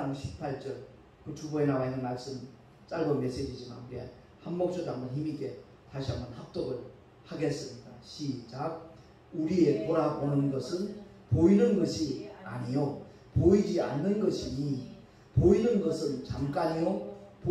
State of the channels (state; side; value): identical; both; correlation 1.00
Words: 18절 그 주보에 나와 있는 말씀 짧은 메시지지만 우리 한 목소리로 한번 힘있게 다시 한번 합독을 하겠습니다. 시작. 우리의 돌아보는 것은 보이는 것이 아니요 보이지 않는 것이니 보이는 것은 잠깐이요